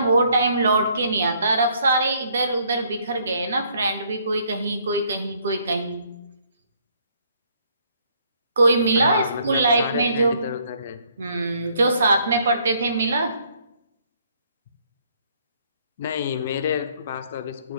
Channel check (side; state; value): both; inverted; correlation -0.66